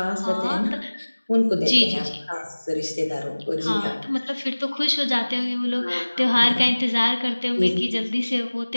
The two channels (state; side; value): inverted; both; correlation -1.00